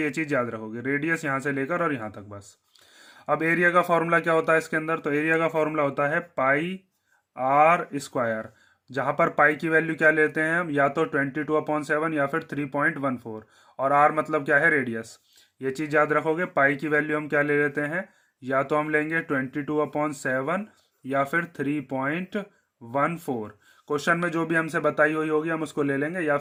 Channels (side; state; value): both; identical; correlation 1.00